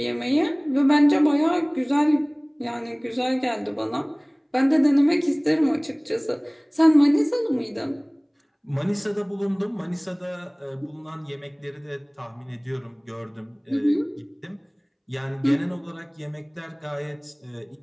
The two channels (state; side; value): identical; both; correlation 1.00